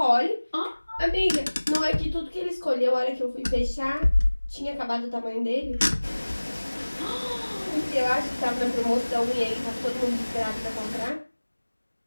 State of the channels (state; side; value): inverted; both; correlation -1.00